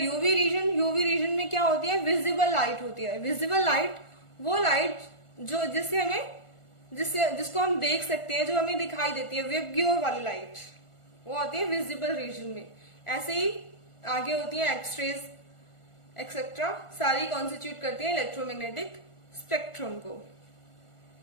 रीजन। यूवी रीजन में क्या होती है, विजिबल लाइट होती है। विजिबल लाइट वो लाइट जो जिसको हम देख सकते हैं, जो हमें दिखाई देती है, विबग्योर वाली लाइट, वो आती है विजिबल रीजन में। ऐसे ही आगे होती है एक्सरेज एक्सेट्रा, सारी कॉन्स्टिट्यूट करती है इलेक्ट्रोमैग्नेटिक स्पेक्ट्रम को।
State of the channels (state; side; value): late; right; 1.4 ms